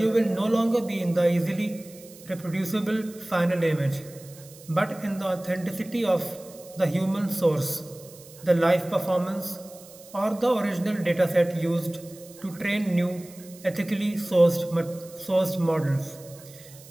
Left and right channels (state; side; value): noise; right; hiss, 21 dB below the sound